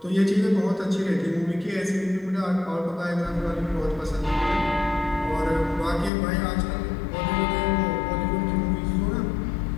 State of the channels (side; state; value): right; drops out; at 6.1 s